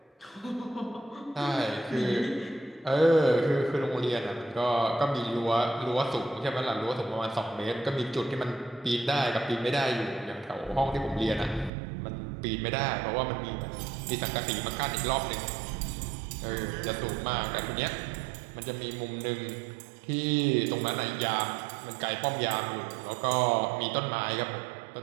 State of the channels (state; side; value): drops out; left; at 11.7 s